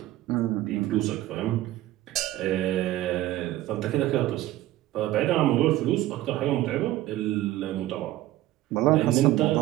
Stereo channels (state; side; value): quieter; left; 15.2 dB